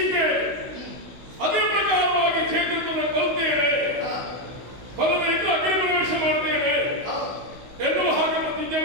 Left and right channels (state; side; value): late; left; 16 ms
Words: ಅದೇ ಪ್ರಕಾರವಾಗಿ ಚೇತನ ಕಲ್ತೇವೆ, ಫಲದೈದು ಅಗ್ನಿ ಪ್ರವೇಶ ಮಾಡ್ತೇವೆ ಎನ್ನುವ ಹಾಗೆ ಪ್ರತಿಜ್ಞೆ